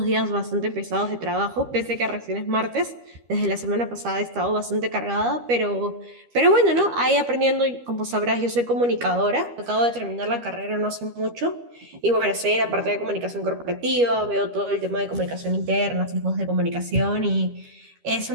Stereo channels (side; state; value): left; late; 13 ms